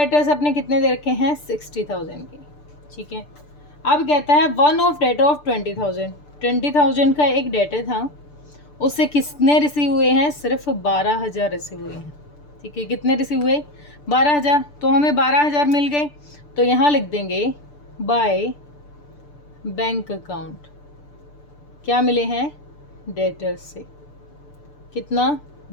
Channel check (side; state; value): right; late; 6.8 ms